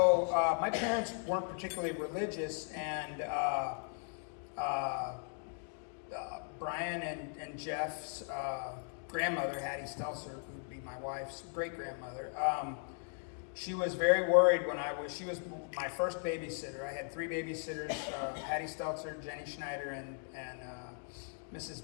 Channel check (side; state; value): right; silent; 53 dB below the other